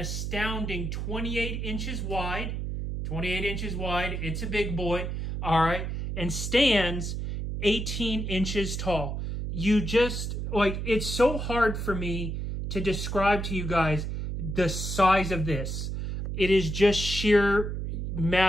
28 inches wide. 28 inches wide. It's a big boy. All right. And stands 18 inches tall. You just, it's so hard for me to describe to you guys the size of this. It is just sheer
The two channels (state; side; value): noise; right; hum, 3 dB below the sound